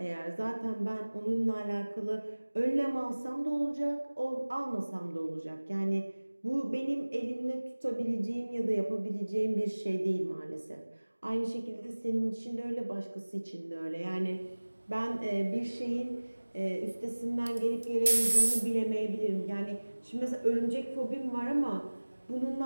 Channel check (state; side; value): inverted; both; correlation -1.00